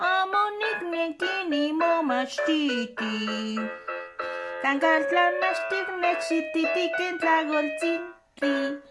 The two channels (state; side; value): identical; both; correlation 1.00